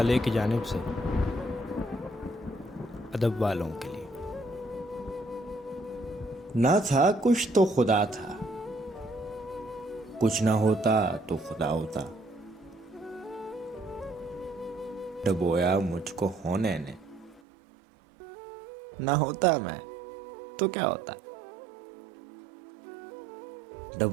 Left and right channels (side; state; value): left; drops out; at 17.4 s